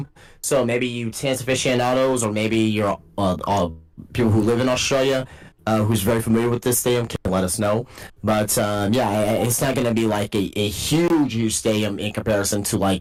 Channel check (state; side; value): identical; both; correlation 1.00